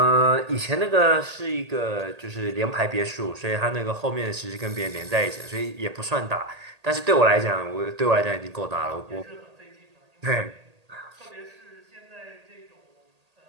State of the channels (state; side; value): late; left; 1.8 ms